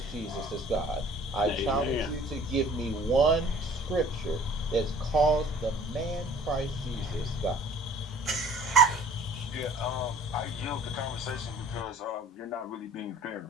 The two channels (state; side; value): normal; both; correlation 0.51